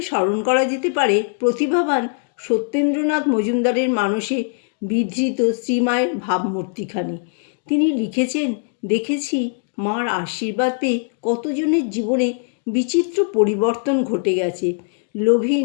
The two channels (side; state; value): right; silent; 65 dB below the other